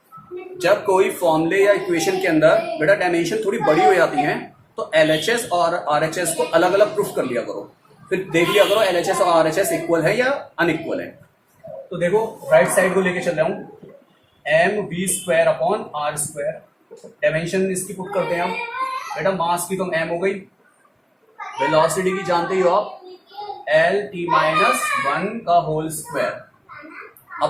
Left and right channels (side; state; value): both; identical; correlation 1.00